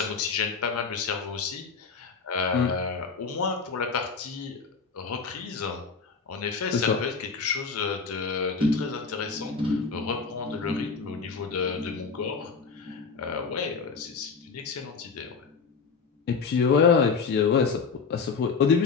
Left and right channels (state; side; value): quieter; right; 5.2 dB